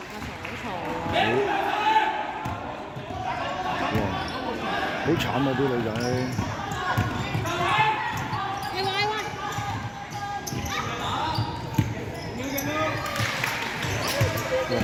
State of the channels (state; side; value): identical; both; correlation 1.00